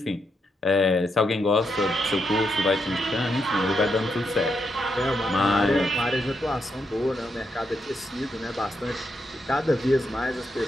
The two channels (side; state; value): both; normal; correlation 0.81